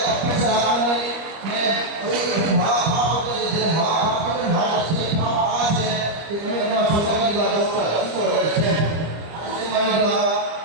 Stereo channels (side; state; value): left; late; 25 ms